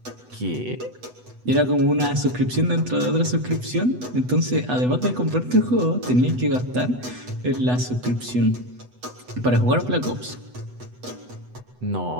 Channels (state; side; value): late; left; 8.1 ms